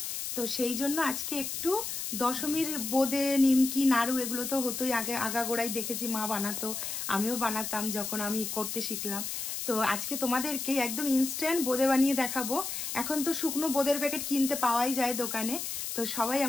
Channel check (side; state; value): left; noise; hiss, 4 dB below the sound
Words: তো সেই জন্য আজকে একটু দশমীর বোঁদে, নিমকি, নাড়ু এগুলো তো হতোই, আগে আগাগোড়াই দেখেছি মা বানাতো, আমিও বানাতাম যখন আমি করতে শিখলাম। তো আজকে তোমাদেরকে একদম ইনস্ট্যান্ট বোঁদে বানিয়ে দেখাবো। এখন তো শুকনো বোঁদের প্যাকেট কিনতে পাওয়াই যায় দোকানে, তো সবাই